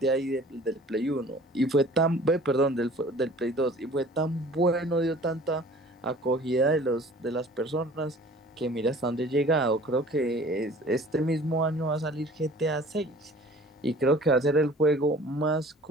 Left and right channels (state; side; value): normal; both; correlation 0.48